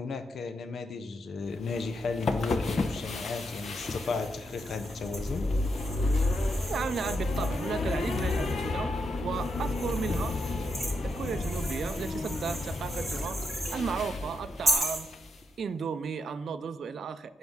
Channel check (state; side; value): normal; both; correlation 0.82